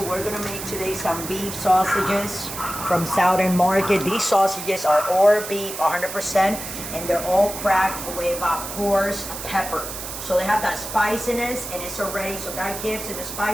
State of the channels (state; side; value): noise; right; hiss, 8 dB below the sound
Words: we're gonna make today some beef sausages from Southern Market. These sausages are all beef 100%, and they're all cracked with coarse pepper. So they have that spiciness, and it's already, so that gives it the